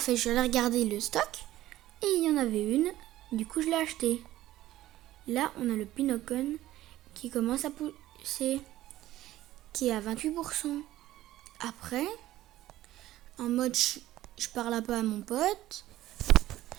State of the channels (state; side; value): quieter; left; 14.9 dB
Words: Je l'ai regardé le stock et il y en avait une. Du coup, je l'ai acheté. Là, on a le Pinocon qui commence à pousser, qui est à 28%. Après, en mode je parle un peu à mon pote.